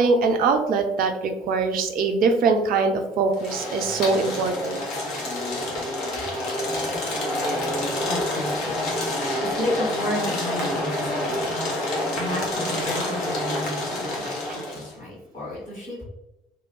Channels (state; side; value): normal; both; correlation 0.48